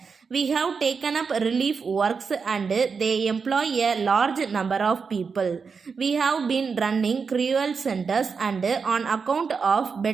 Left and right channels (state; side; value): quieter; left; 5.4 dB